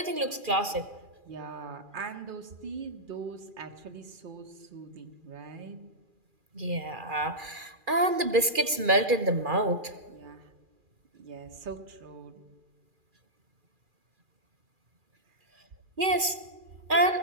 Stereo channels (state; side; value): late; left; 2.4 ms